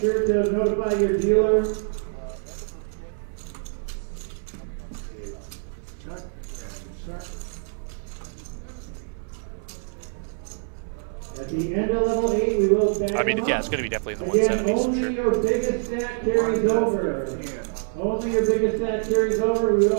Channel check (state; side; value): silent; left; 61 dB below the other